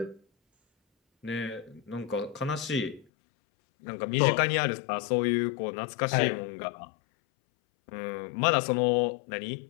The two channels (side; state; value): right; drops out; at 3.1 s